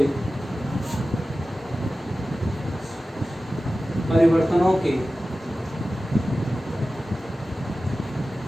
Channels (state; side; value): normal; both; correlation 0.95